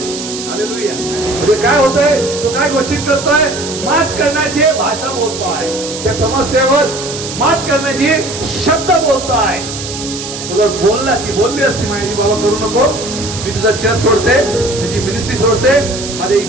हालेलुया. म्हणजे काय होतंय, तो काय घोषित करतोय, मात करण्याची भाषा बोलतोय, त्या समस्येवर मात करण्याची शब्द बोलतोय. तुला बोलला की बोलली असती माझी, बाबा करू नको, मी तुझा चर्च सोडते, तुझी मिनिस्ट्री सोडते, माझ्या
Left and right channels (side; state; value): right; noise; hiss, 8 dB below the sound